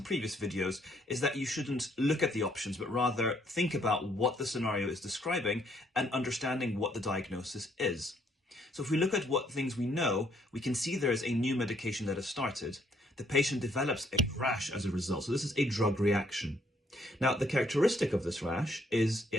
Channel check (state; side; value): normal; both; correlation 0.68